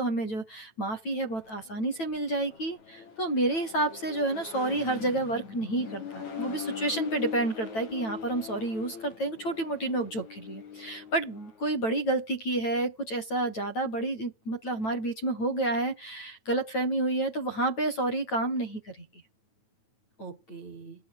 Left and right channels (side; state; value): right; late; 9.1 ms